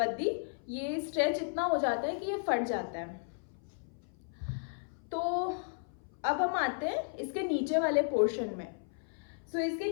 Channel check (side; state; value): right; silent; 55 dB below the other